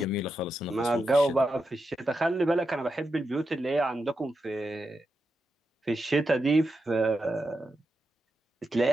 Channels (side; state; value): both; normal; correlation 0.87